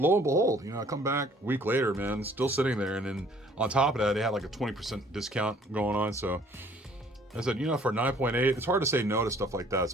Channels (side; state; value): both; normal; correlation 0.57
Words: and behold, I come back a week later, man, still sitting there. And then on top of that, they had like a 20% discount going on. So I said, for 9.8, it's hard to say no to stuff like that,